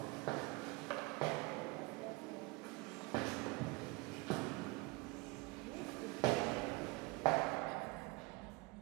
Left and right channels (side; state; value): left; quieter; 24.9 dB